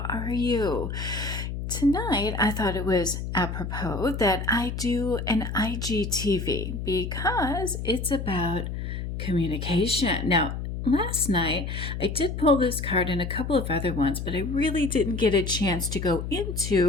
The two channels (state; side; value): noise; left; hum, 5 dB below the sound